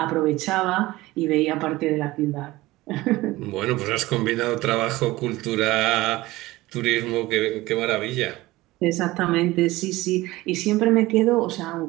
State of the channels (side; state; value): left; quieter; 18.9 dB